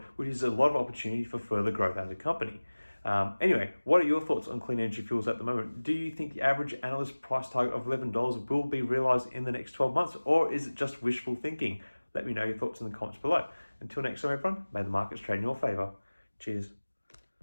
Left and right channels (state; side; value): inverted; both; correlation -1.00